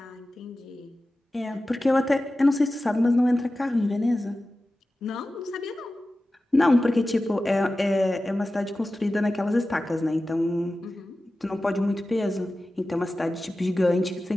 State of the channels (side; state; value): both; normal; correlation 0.95